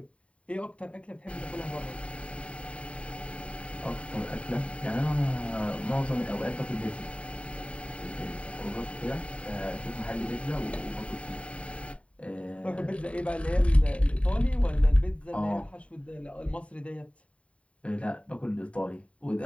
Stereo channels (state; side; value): late; right; 0.063 ms